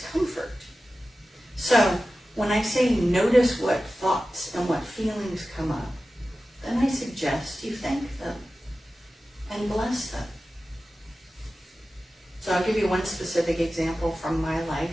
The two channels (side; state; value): both; normal; correlation 0.94